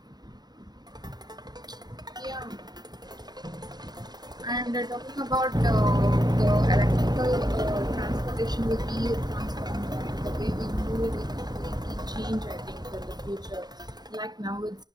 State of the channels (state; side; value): late; left; 0.20 ms